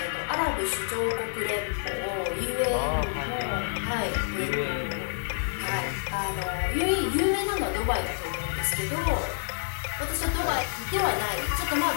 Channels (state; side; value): silent; right; digital silence